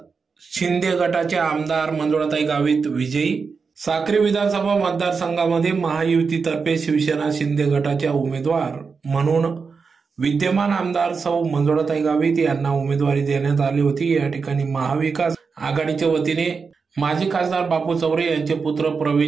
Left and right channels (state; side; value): quieter; left; 5.1 dB